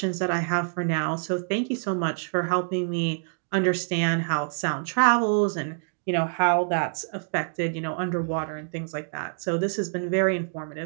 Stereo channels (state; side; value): silent; left; 61 dB below the other